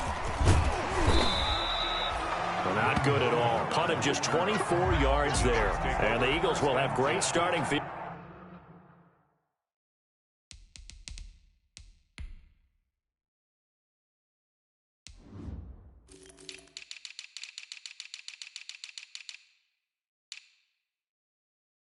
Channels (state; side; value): identical; both; correlation 1.00